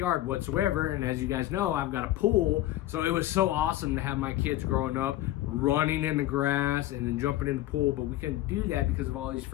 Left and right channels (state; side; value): quieter; right; 14.9 dB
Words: whatsoever, and as you guys know, I've got a pool, so it was so awesome to have my kids growing up running in the grass and then jumping in the pool, but we couldn't do that because of all these